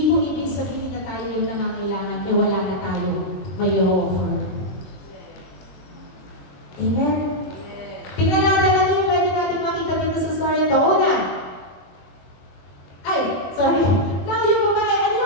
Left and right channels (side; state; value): right; late; 21 ms